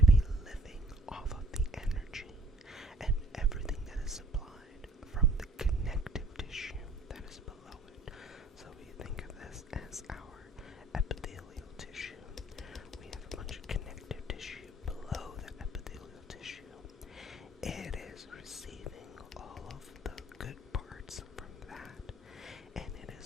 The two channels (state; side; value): normal; both; correlation 0.56